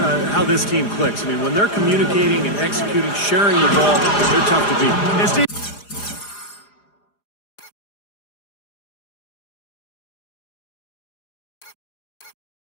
how this team clicks. I mean, when they're communicating and executing, sharing the ball, they're tough to beat. And Steve,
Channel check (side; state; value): right; late; 4.9 ms